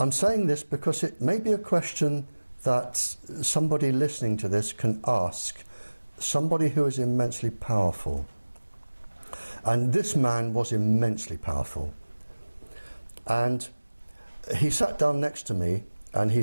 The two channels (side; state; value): both; inverted; correlation -1.00